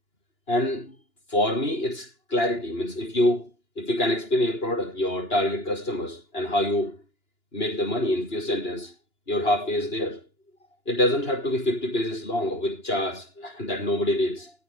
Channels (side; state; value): right; late; 2.9 ms